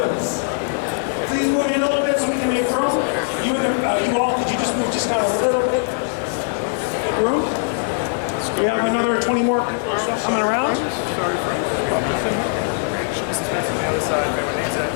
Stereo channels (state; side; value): silent; right; 65 dB below the other